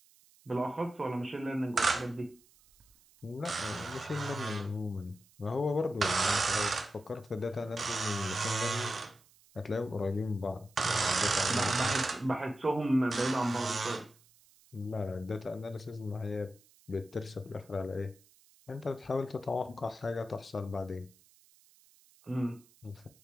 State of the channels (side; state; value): right; noise; hiss, 28 dB below the sound